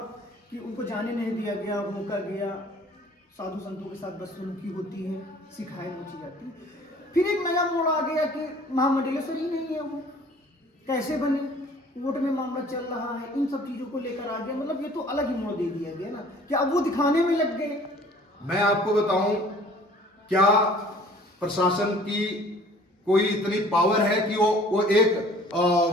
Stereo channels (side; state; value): both; normal; correlation 0.52